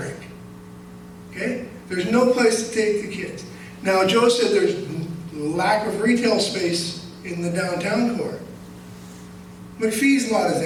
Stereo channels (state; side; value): identical; both; correlation 1.00